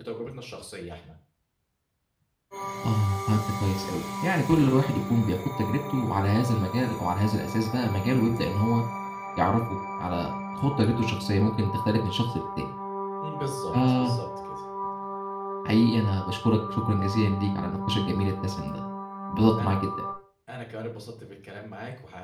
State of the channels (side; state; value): both; identical; correlation 1.00